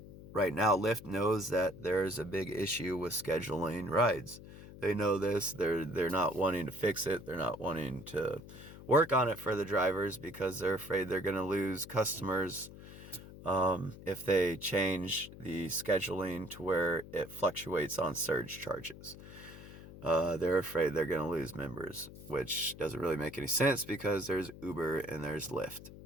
Right now, Lyft knows that there's a big issue with scheduling rides. They know this. They're not wanting to fix it. They're not wanting to work on it for the drivers because they're afraid they're going to lose customers if they change the scheduling to where it fluctuates on surge charges. They're afraid they're going to lose members, which doesn't really make any sense because there's Uber and there's Lyft.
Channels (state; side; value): noise; left; hum, 16 dB below the sound